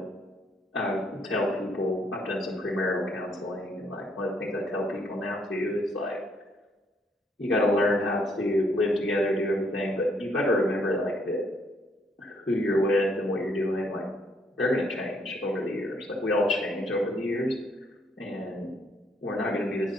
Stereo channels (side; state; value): both; normal; correlation 0.69